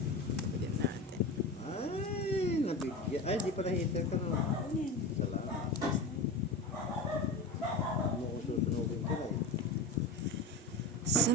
Pwede natin. Ay, nabigyan. Ay, di pala hater ka no. Ano yan? Salamat. Ano ko susunugin ka eh.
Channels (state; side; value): normal; both; correlation 0.26